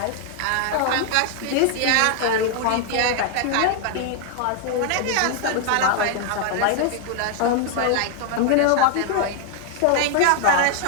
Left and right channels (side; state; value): both; different; correlation 0.00